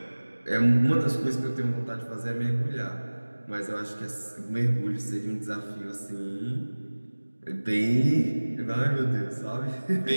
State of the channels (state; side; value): inverted; both; correlation -1.00